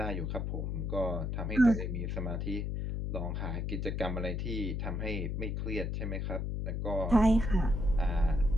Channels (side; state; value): left; noise; hum, 2 dB below the sound